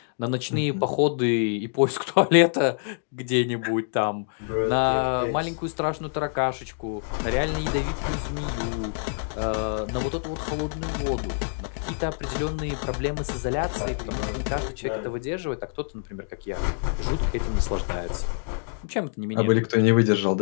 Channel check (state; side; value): silent; right; digital silence